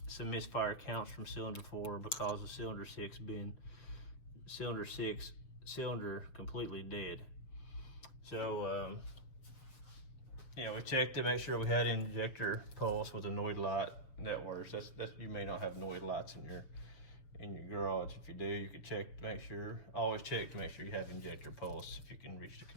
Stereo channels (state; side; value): late; right; 6.7 ms